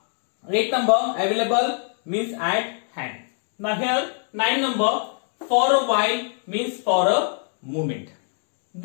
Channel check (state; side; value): silent; right; 57 dB below the other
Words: eighth number, available means at hand. Now here nine number, for a while means for a moment.